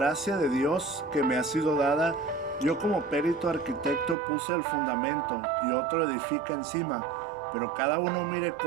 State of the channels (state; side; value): drops out; left; at 4.2 s